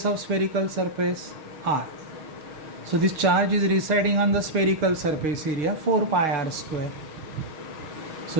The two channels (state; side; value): late; left; 6.4 ms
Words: of spherical surface, r। So this charge is residing on the spherical surface area 4πr²। So